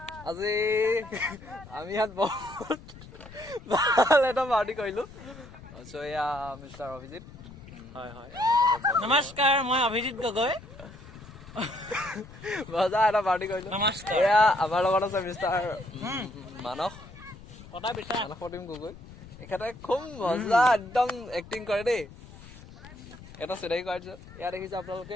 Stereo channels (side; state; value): left; noise; rumble, 18 dB below the sound